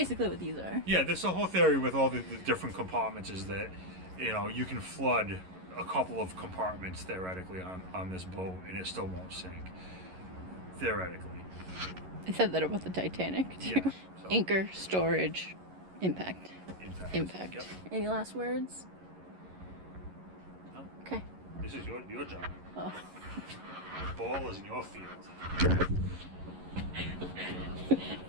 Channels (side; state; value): left; late; 11 ms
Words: what these are. Yeah, that's the whole theory with all the different compartments is that, you know, you can flood a couple of compartments theoretically on this boat and it still won't sink. Theoretically. I said that about the Titanic too. Yeah. So, Anchor, storage, impact. impact. Yep. Any last words? No. Okay. This is your job. Oh. The ball is in your field.